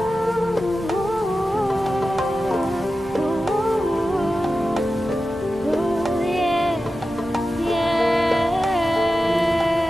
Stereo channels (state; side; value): normal; both; correlation 0.93